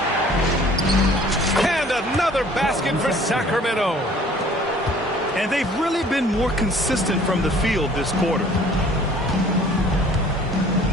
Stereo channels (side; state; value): both; normal; correlation 0.53